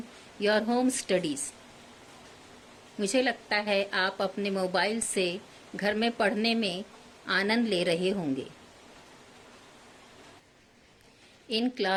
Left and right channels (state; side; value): identical; both; correlation 1.00